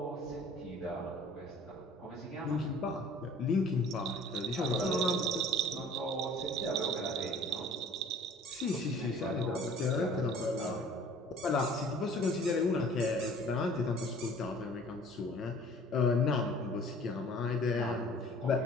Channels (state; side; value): normal; both; correlation 0.49